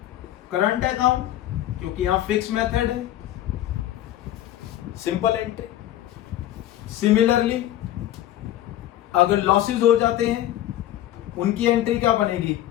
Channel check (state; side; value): quieter; right; 13.2 dB